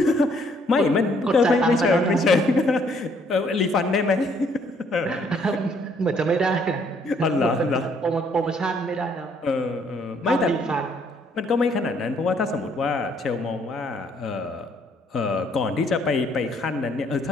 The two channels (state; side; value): normal; both; correlation 0.66